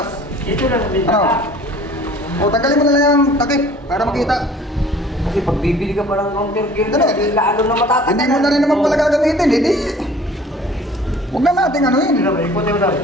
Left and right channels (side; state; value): both; normal; correlation 0.50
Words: Dito lang sa Ano? bintana. O, tanggalin mo na lang yung takip para makita. Kasi pag bibili ka pa ng counter gear Ano? niya, lalo na matatagal. Hindi mo na rin naman pala gagamitin, hindi. Huwag na natin ano yun. Ikutin mo daw.